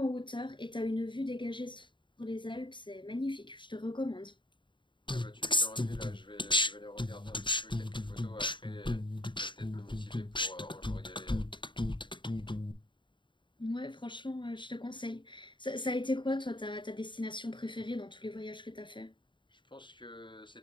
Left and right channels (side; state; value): right; late; 0.23 ms